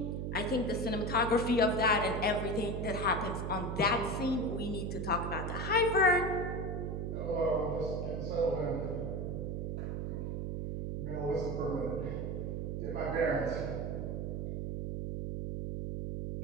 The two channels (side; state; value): right; noise; hum, 2 dB below the sound